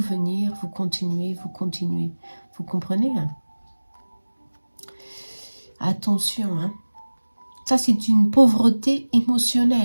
vous continuez. Vous comprenez? Attention, hein. Ça c'est une pauvreté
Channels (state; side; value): inverted; both; correlation -1.00